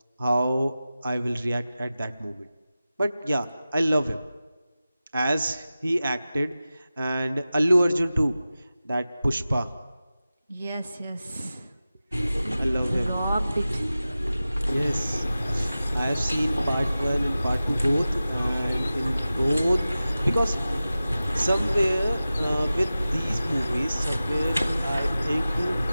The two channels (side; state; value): both; inverted; correlation -0.95